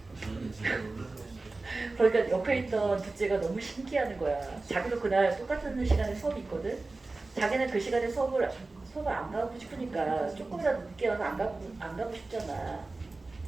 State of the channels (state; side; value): quieter; left; 3.4 dB